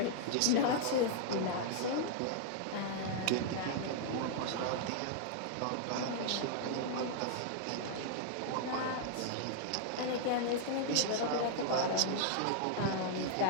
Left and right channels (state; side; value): different; both; correlation -0.01